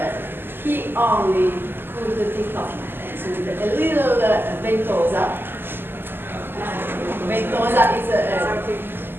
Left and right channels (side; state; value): left; late; 0.098 ms